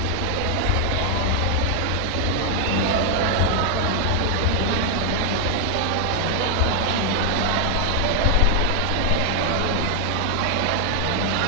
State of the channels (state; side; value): different; both; correlation 0.00